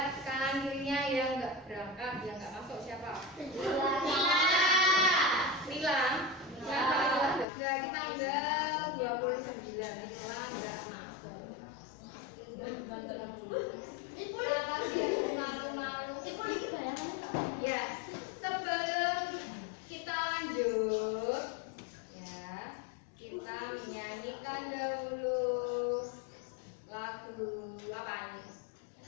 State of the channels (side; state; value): right; drops out; at 7.5 s